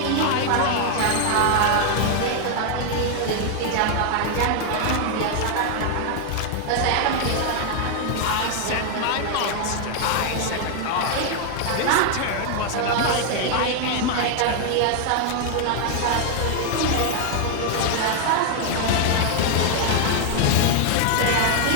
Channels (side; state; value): both; different; correlation 0.00